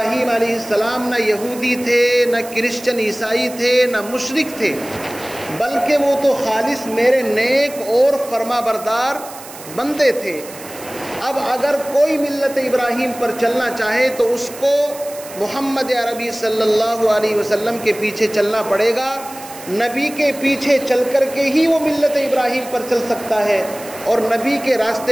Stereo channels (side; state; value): right; noise; hiss, 16 dB below the sound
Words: علیہ السلام نہ یہودی تھے، نہ کرسچن عیسائی تھے، نہ مشرک تھے، بلکہ وہ تو خالص میرے نیک اور فرما بردار بندے تھے۔ اب اگر کوئی ملت ابراہیم پر چلنا چاہے تو اس کو محمد عربی صلی اللہ علیہ وسلم کے پیچھے چلنا پڑے گا۔ نبی کے پیچھے چل کر کے ہی وہ ملت ابراہیم پر چل سکتا ہے، اور نبی کے